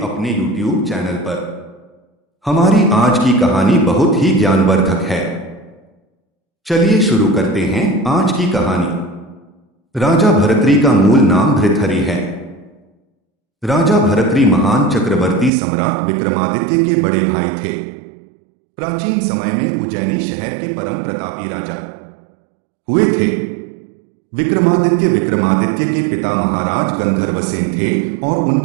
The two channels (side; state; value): left; drops out; at 15.5 s